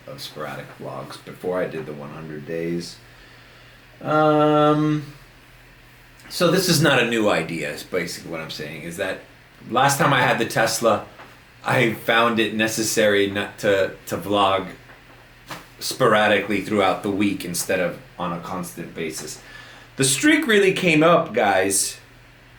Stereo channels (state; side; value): identical; both; correlation 1.00